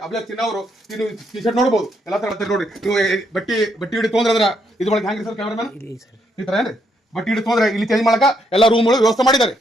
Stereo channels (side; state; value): both; normal; correlation 0.75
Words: ಅಭಿಲೇಖ್ ಚಿನ್ನ ಅವರು ಟಿ ಶರ್ಟ್ ನೋಡಬಹುದು. ಎಲ್ಲ ತರ ನೋಡ್ರಿ. ನೀವು ಬಟ್ಟಿ ಹಿಡಿ ತೊಂದ್ರೆ ಇದು ಒಳಗೆ ಹ್ಯಾಂಗ್ರಿ ಸರ್ ಕ್ಯಾಮ್ರಾಮನ್ ಈ ತರ ಏನ್ರಿ ಬಟ್ಟಿ ಹಿಡಿ ತೊಂದ್ರೆ ಇಲ್ಲಿ ಚೇಂಜ್ ಮಾಡಕ ಎಲ್ಲ ರೂಮ್ಗಳು ವ್ಯವಸ್ಥೆ ಮಾಡಿದ್ದಾರೆ.